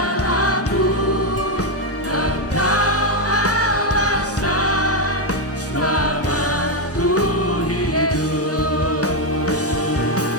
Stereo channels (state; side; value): normal; both; correlation 0.05